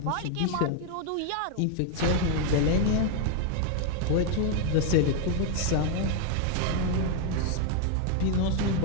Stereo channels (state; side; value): different; both; correlation 0.01